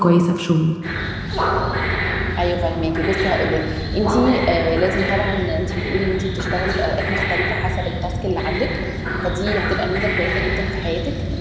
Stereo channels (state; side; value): identical; both; correlation 1.00